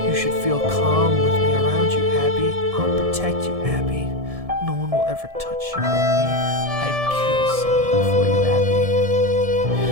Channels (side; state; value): left; late; 1.7 ms